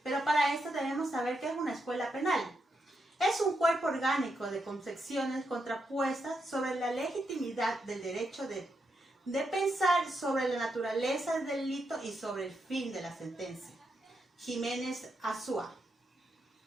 pero para esto debemos saber qué es una escuela penal. Es un cuerpo orgánico de concepciones contrapuestas sobre la legitimidad del derecho de pensar sobre la naturaleza del delito y sobre el fin de la sentencia. Jiménez Azúa.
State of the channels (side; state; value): both; normal; correlation 0.83